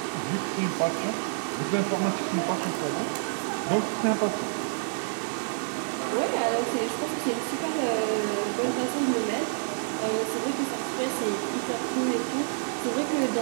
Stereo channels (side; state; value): left; silent; digital silence